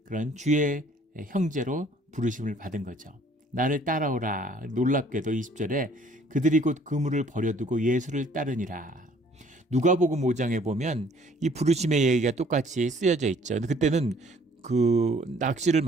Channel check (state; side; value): normal; both; correlation 0.58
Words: 그런 주의 형제로 부르심을 받은 거죠. 나를 따라오라. 놀랍게도 20절에 그들이 곧 그물을 버려두고 예수를 따르니라. 누가복음 5장에 보면 이 부르심의 얘기가 똑같이 쓰여져 있죠. 그때는 그 낚시를